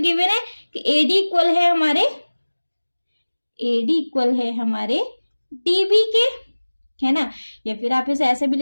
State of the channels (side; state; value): both; inverted; correlation -1.00